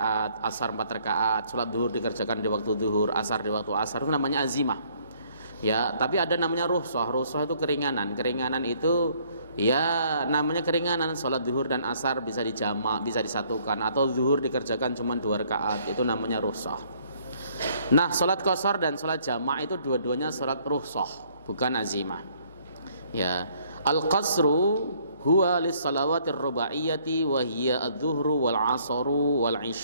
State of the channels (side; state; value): both; inverted; correlation -0.64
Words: asar 4 rakaat, sholat zuhur dikerjakan di waktu zuhur, asar di waktu asar, itu namanya azimah. Ya, tapi ada namanya rukhsah. Rukhsah itu keringanan. Keringanan itu ya namanya keringanan, sholat zuhur dan asar bisa dijamak, bisa disatukan, atau zuhur dikerjakan cuma 2 rakaat, itu namanya rukhsah. Nah, sholat qasar dan sholat jamak itu dua-duanya sholat rukhsah, bukan azimah. Ya, al-qasru huwa lis-salawatir rubaiyati wa hiya adz-dzuhru wal 'asru wal